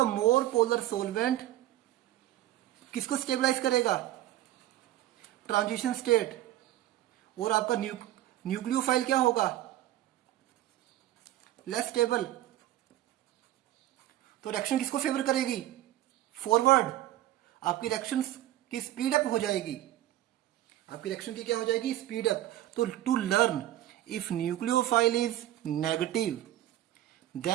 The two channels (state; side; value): quieter; left; 14.0 dB